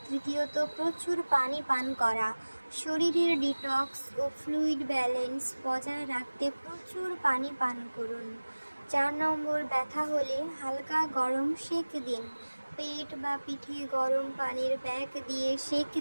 তৃতীয়ত, প্রচুর পানি পান করা। শরীরের ডিটক্স ও ফ্লুইড ব্যালেন্স বজায় রাখতে প্রচুর পানি পান করুন। 4 নম্বর, ব্যথা হলে হালকা গরম সেঁক দিন। পেট বা পিঠে গরম পানির প্যাক দিয়ে সেঁক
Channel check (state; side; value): inverted; both; correlation -1.00